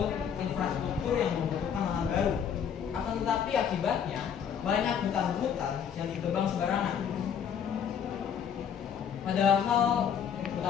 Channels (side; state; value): right; quieter; 8.0 dB